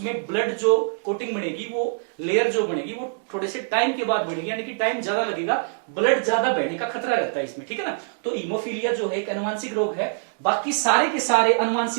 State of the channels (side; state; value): left; silent; digital silence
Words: ब्लड जो कोटिंग बनेगी, वो लेयर जो बनेगी वो थोड़े से टाइम के बाद बनेगी, यानी कि टाइम ज्यादा लगेगा, ब्लड ज्यादा बहने का खतरा रहता है इसमें। ठीक है ना, तो हीमोफीलिया जो है एक अनुवांशिक रोग है। बाकी सारे के सारे